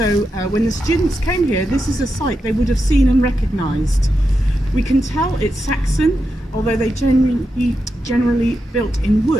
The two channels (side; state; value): both; normal; correlation 0.87